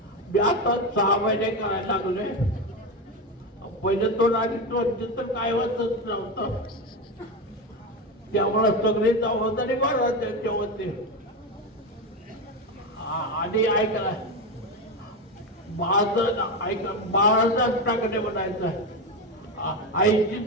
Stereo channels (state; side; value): normal; both; correlation 0.16